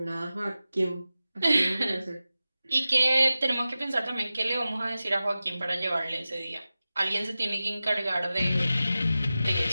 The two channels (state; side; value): inverted; both; correlation -0.95